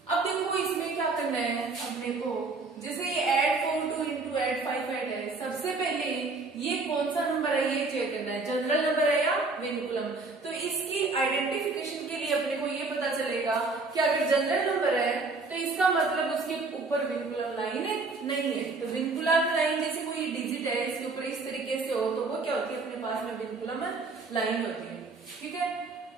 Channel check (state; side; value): quieter; left; 3.8 dB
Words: अब देखो इसमें क्या करना है अपने को, जैसे ये ऐड 4 2 इंटू ऐड 5 ऐड है। सबसे पहले ये कौन सा नंबर है ये चेक करना है, जनरल नंबर है या विनकुलम। तो इसकी आइडेंटिफिकेशन के लिए अपने को ये पता चलेगा कि अगर जनरल नंबर है तो इसका मतलब उसके ऊपर विनकुलम लाइन नहीं है। तो विनकुलम लाइन जैसे कोई डिजिट है इसके ऊपर इस तरीके से हो तो वो क्या होती है, अपने पास में विनकुलम लाइन होती है। ठीक है,